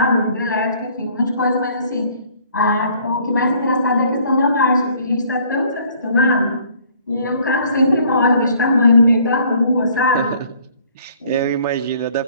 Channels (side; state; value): both; inverted; correlation -0.59